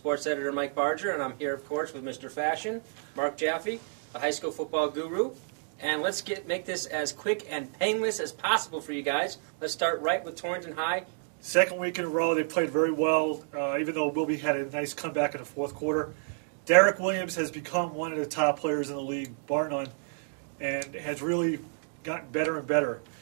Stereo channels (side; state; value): left; silent; digital silence